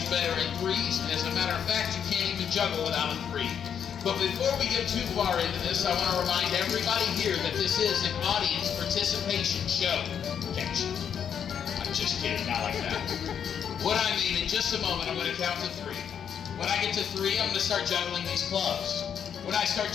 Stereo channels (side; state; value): right; quieter; 8.2 dB